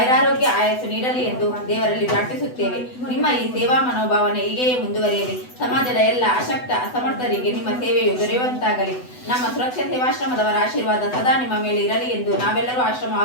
ಆಯಸ್ಸು ನೀಡಲಿ ಎಂದು ದೇವರಲ್ಲಿ ಪ್ರಾರ್ಥಿಸುತ್ತೇವೆ. ನಿಮ್ಮ ಈ ಸೇವಾ ಮನೋಭಾವನೆ ಹೀಗೆಯೇ ಮುಂದುವರಿಯಲಿ. ಸಮಾಜದ ಎಲ್ಲ ಅಶಕ್ತ ಅಸಮರ್ಥರಿಗೆ ನಿಮ್ಮ ಸೇವೆಯು ದೊರೆಯುವಂತಾಗಲಿ. ನಮ್ಮ ಸುರಕ್ಷಾ ಸೇವಾಶ್ರಮದವರ ಆಶೀರ್ವಾದ ಸದಾ ನಿಮ್ಮ ಮೇಲೆ ಇರಲಿ ಎಂದು ನಾವೆಲ್ಲರೂ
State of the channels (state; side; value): late; right; 8.0 ms